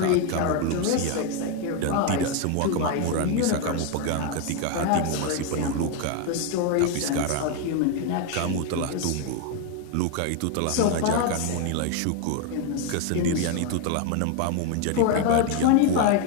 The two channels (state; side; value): different; both; correlation 0.02